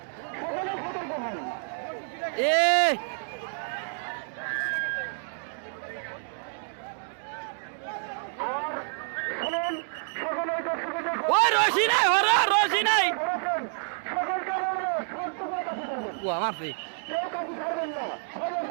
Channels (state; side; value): silent; left; digital silence